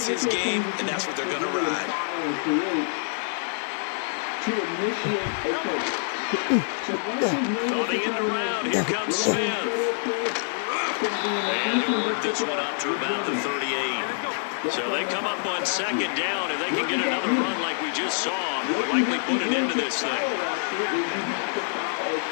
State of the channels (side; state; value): right; silent; 60 dB below the other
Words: his game, and that's what they're going to ride. To initiate a coach. Coming in the round, here comes Smith. And he'll work this one up to about the 38. So they come up on 2nd down. If they can get another run like we just saw, they'll likely put it into this thing. On